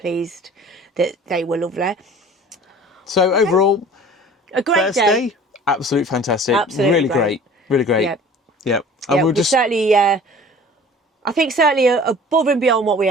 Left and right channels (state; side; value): normal; both; correlation 0.45